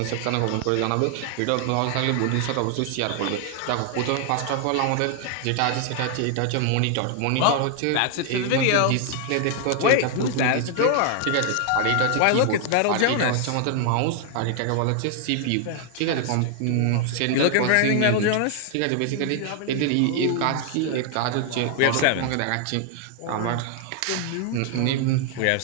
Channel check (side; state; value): both; different; correlation 0.00